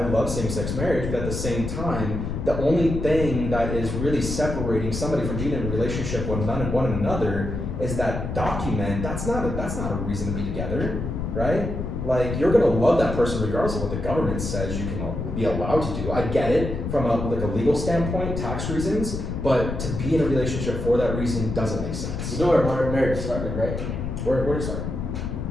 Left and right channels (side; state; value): left; noise; rumble, 4 dB below the sound